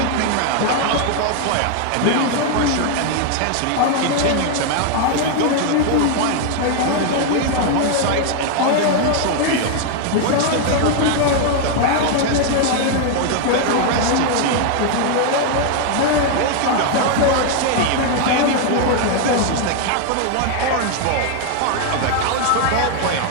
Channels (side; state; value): both; different; correlation 0.01